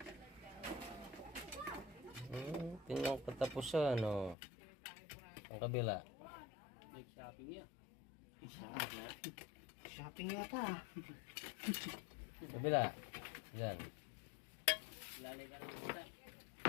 Tingnan ko katapusan, ano. Ang kabila. Shopping yata. Kabila. Yan. Yan.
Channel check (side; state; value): right; drops out; at 4.4 s